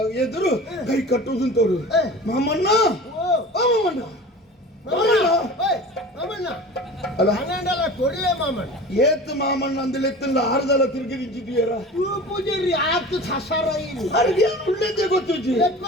ಎದುರು ಕೈ ಕಟ್ಟುವುದು ತೋರು ಮಾಮಣ್ಣ ಏತ್ ಮಾಮಣ್ಣ ಅಂದಲೆ ಎತ್ತಲ್ಲ ಆರ್ದಲ್ಲ ತಿರುಗಿ ನಿಂತಿದ್ದೀರ ಪೂಜಾರಿ ಆತು ಸಸಾರ ಉಳ್ಳೇದೇ ಗೊತ್ತಿಜ್ಜಿ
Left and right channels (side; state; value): both; normal; correlation 0.37